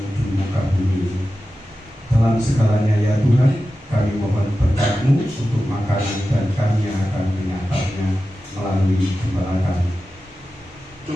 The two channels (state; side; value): normal; both; correlation 0.93